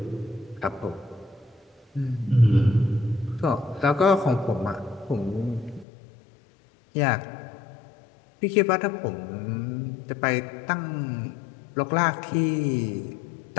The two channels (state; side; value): drops out; right; at 5.9 s